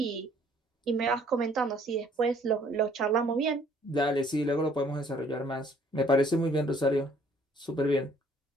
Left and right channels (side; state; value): both; normal; correlation 0.60